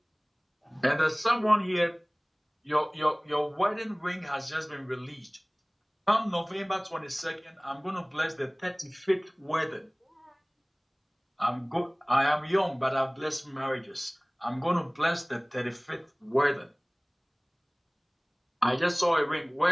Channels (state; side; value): identical; both; correlation 1.00